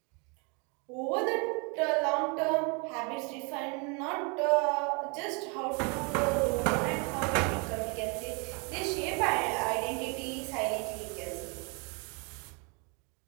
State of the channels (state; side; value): quieter; left; 33.1 dB